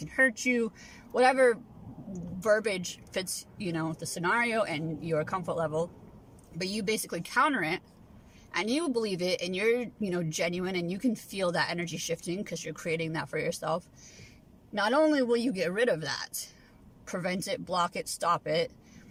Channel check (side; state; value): both; identical; correlation 1.00